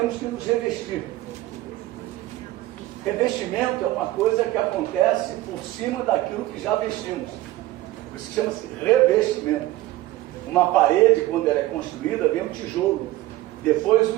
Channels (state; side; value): quieter; left; 16.3 dB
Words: que nos revestir. Revestimento é uma coisa que acontece por cima daquilo que já vestimos. Por isso chama-se revestimento. Uma parede, quando ela é construída, vem um tijolo, depois o